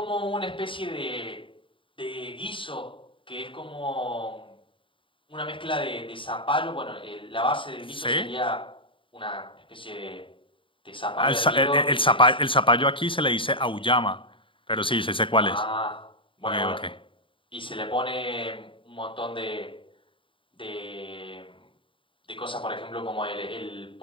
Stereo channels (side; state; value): right; late; 0.25 ms